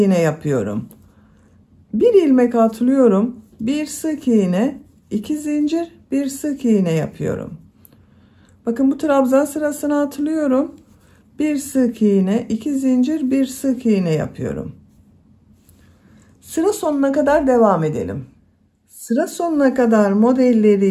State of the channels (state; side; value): identical; both; correlation 1.00